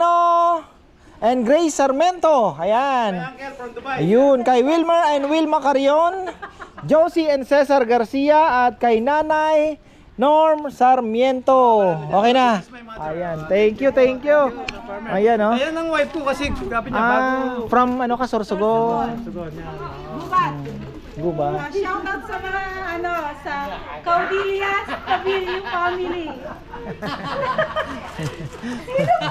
and Grace Sarmento. Ayan. Ayun, kay Wilmer and Wilma Carion, Josie and Cesar Garcia, at kay Nanay Norm Sarmiento. Okay na. Ayan, thank you. Ayan oh. Ayan ang wife ko kasi grabe niya bago. From ano ka, Sorsogon? Guba. Shoutout sa mga sa Caudillas, Cabillo family.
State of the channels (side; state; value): both; identical; correlation 1.00